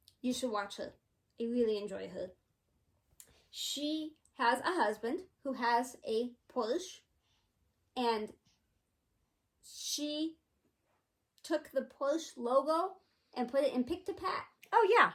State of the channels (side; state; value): both; identical; correlation 1.00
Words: You should watch her. I really enjoy her. She has a husband who has a Porsche, and she took the Porsche logo and put it in Pick-to-Pat. Oh, yeah.